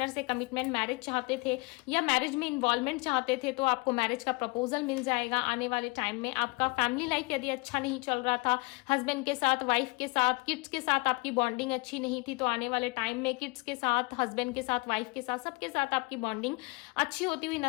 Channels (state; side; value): quieter; right; 27.5 dB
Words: से कमिटमेंट, मैरिज चाहते थे, या मैरिज में इन्वॉल्वमेंट चाहते थे, तो आपको मैरिज का प्रपोजल मिल जाएगा आने वाले टाइम में। आपका फैमिली लाइफ यदि अच्छा नहीं चल रहा था, हस्बैंड के साथ, वाइफ के साथ, किड्स के साथ आपकी बॉन्डिंग अच्छी नहीं थी, तो आने वाले टाइम में किड्स के साथ, हस्बैंड के साथ, वाइफ के साथ, सबके साथ आपकी बॉन्डिंग अच्छी होती हुई